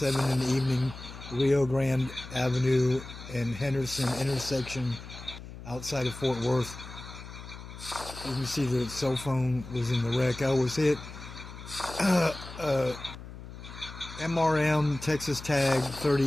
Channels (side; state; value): left; noise; hum, 13 dB below the sound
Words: in the evening, Rio Grande Avenue and Henderson intersection outside of Fort Worth. You can see the cell phone was in the wreck. I was hit. MRM Texas tag